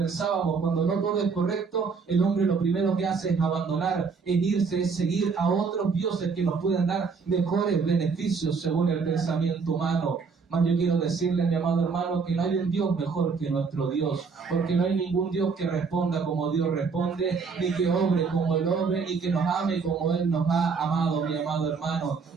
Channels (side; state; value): left; quieter; 5.1 dB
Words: cuando no todo es correcto, el hombre lo primero que hace es abandonar, es irse, es seguir a otros dioses que nos pueden dar mejores beneficios según el pensamiento humano. Mas yo quiero decirle, mi amado hermano, que no hay un Dios mejor que nuestro Dios, porque no hay ningún Dios que responda como Dios responde, ni que obre como Él obre, ni que nos ame como Él nos ha amado, mi amado hermano.